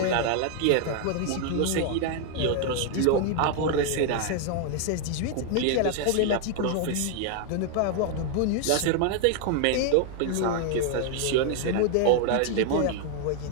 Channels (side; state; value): both; different; correlation 0.00